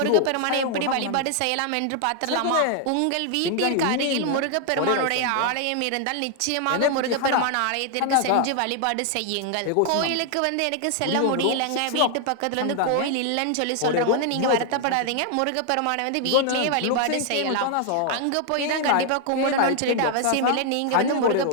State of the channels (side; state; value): both; different; correlation 0.00